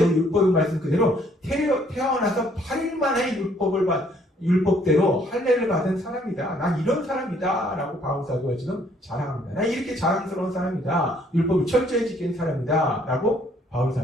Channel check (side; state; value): both; normal; correlation 0.64